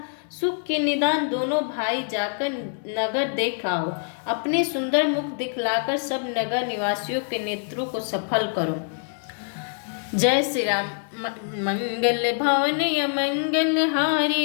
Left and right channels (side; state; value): right; silent; digital silence